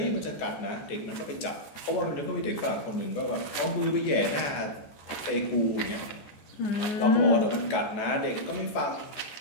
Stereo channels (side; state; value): right; late; 14 ms